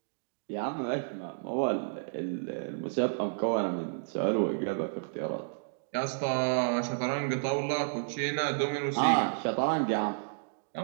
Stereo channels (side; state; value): left; silent; digital silence